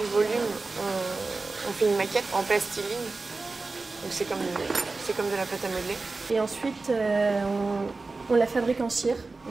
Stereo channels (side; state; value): left; quieter; 3.7 dB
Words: du volume, on fait une maquette en plastiline. Donc c'est comme de la pâte à modeler. Et ensuite on la fabrique en cire.